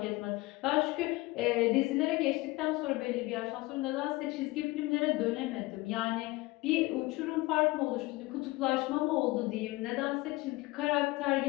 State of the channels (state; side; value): quieter; right; 20.8 dB